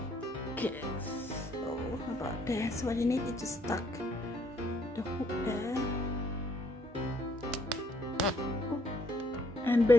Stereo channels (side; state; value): both; normal; correlation 0.67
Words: Okay, so about there. So what you need is just stuck the hook there, and